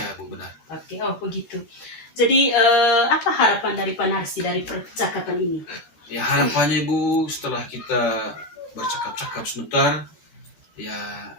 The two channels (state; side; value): late; right; 14 ms